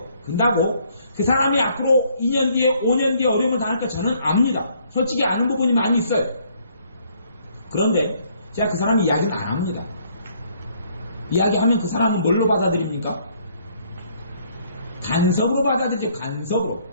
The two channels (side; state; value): both; inverted; correlation -0.65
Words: 근다고 그 사람이 앞으로 2년 뒤에 5년 뒤에 어려움을 당할까 저는 압니다. 솔직히 아는 부분이 많이 있어요. 그런데 제가 그 사람 이야기는 안 합니다. 이야기하면 그 사람은 뭘로 받아들입니까? 간섭으로 받아들이죠. 간섭으로.